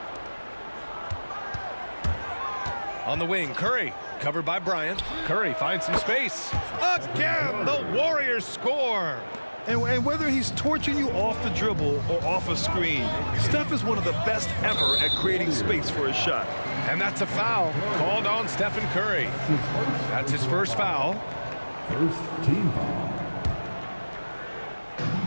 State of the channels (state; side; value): inverted; both; correlation -1.00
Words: On the wing, Curry, covered by Bryant. Curry finds some space. Again, the Warriors score. And whether he's torching you off the dribble or off a screen, Steph is one of the best ever at creating space for his shot. And that's a foul called on Stephen Curry. That's his first foul. First team foul.